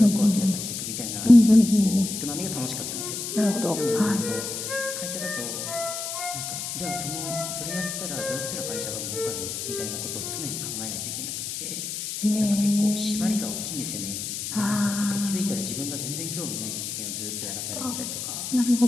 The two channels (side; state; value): left; noise; hiss, 5 dB below the sound